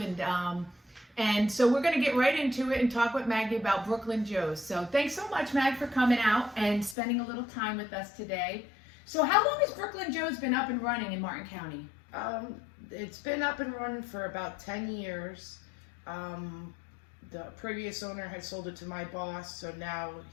And so we're going to get right into it and talk with Maggie about Brooklyn Joe's. So thanks so much, Mag, for coming out and spending a little time with us today. So how long has Brooklyn Joe's been up and running in Martin County? It's been up and running for about 10 years. The previous owner had sold it to my boss, so now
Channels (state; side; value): drops out; right; at 7.0 s